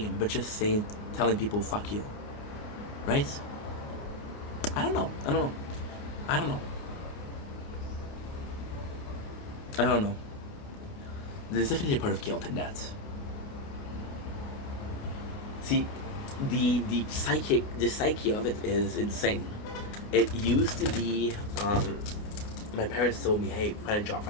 but just saying, telling people, fuck you, right? I don't know. I don't know. I don't know. I don't know. There's definitely a part of guilt in that. See, the psyche of it is insane. It used to be, my parents told me, hey, find a job,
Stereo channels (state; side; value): late; right; 29 ms